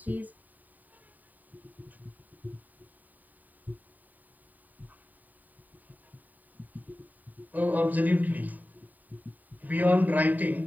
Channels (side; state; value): left; late; 0.084 ms